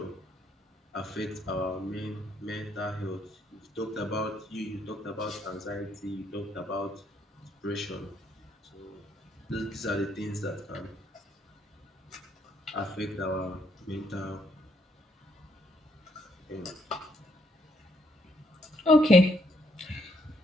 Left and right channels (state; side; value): normal; both; correlation 0.71